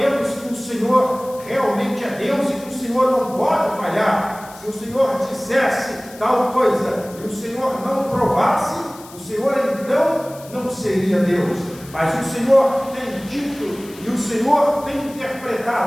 que o Senhor realmente é Deus e que o Senhor não pode falhar. Se o Senhor dissesse tal coisa e o Senhor não provasse, o Senhor então não seria Deus. Mas o Senhor tem dito e o Senhor tem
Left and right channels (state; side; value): noise; left; hiss, 20 dB below the sound